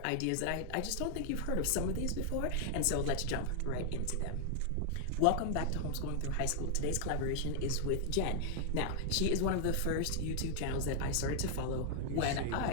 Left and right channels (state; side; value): different; both; correlation -0.01